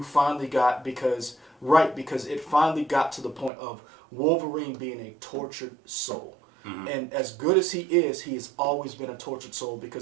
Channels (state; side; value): drops out; left; at 3.5 s